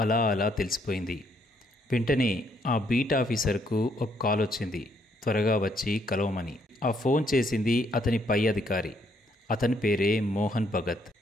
అలా అలా తెలిసిపోయింది. వెంటనే ఆ బీట్ ఆఫీసర్కు ఒక కాల్ వచ్చింది, త్వరగా వచ్చి కలవమని. ఆ ఫోన్ చేసింది అతని పై అధికారి. అతని పేరే మోహన్ భగత్.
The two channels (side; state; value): both; normal; correlation 0.71